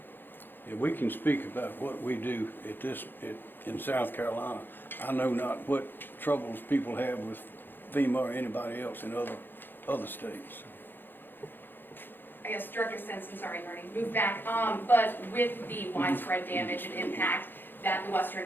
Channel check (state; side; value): late; right; 0.097 ms